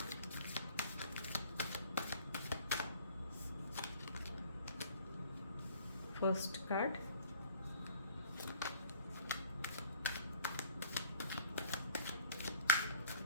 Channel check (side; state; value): both; inverted; correlation -0.51